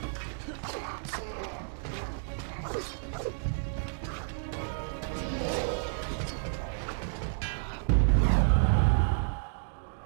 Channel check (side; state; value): left; silent; digital silence